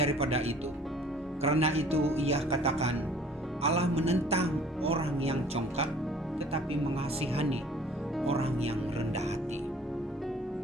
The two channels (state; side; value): normal; both; correlation 0.52